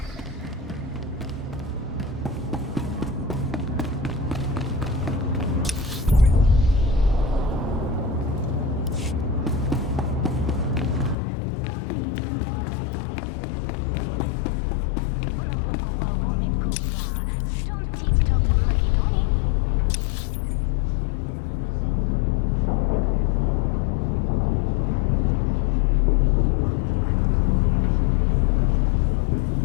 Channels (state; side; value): drops out; right; at 11.2 s